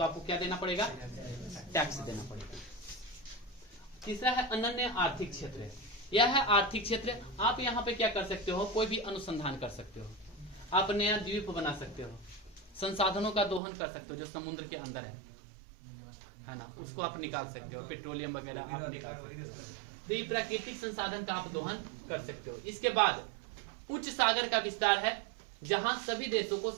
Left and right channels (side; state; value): left; drops out; at 13.6 s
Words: आपको क्या देना पड़ेगा? टैक्स देना पड़ेगा। तीसरा है अनन्य आर्थिक क्षेत्र। यह है आर्थिक क्षेत्र। आप यहाँ पे क्या कर सकते हो? कोई भी अनुसंधान कर सकते हो, आप नया द्वीप बना सकते हो, संसाधनों का दोहन कर सकते हो जो समुद्र के अंदर है ना, उसको आप निकाल सकते हो, पेट्रोलियम वगैरह आप निकाल सकते हो। तो ये प्राकृतिक संसाधन का आप दोहन कर सकते हो। इसके बाद उच्च सागर का विस्तार है, जहां सभी देशों को